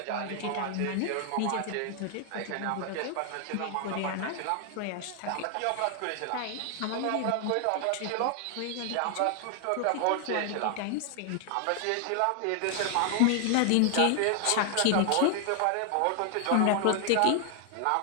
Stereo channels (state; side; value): different; both; correlation 0.00